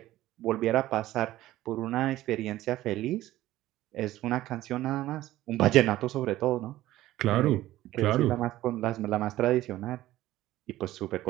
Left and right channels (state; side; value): quieter; left; 15.3 dB